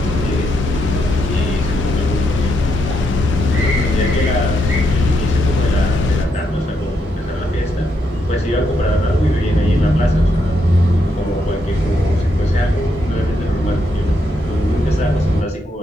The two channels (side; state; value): both; normal; correlation 0.79